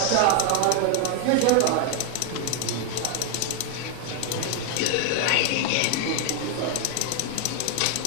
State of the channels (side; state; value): both; different; correlation 0.00